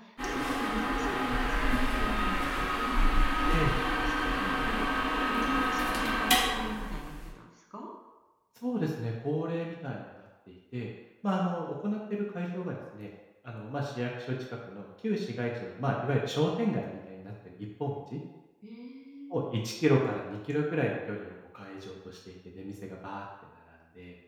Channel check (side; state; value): both; identical; correlation 1.00